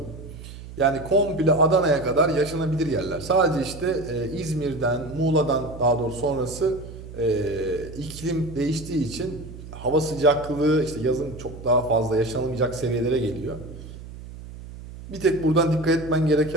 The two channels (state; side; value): noise; right; hum, 14 dB below the sound